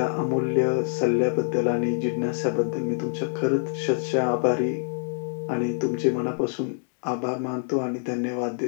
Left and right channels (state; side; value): silent; right; digital silence